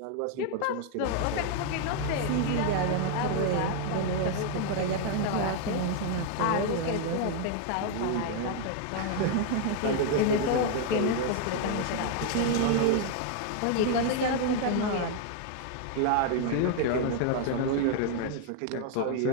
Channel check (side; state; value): both; different; correlation 0.00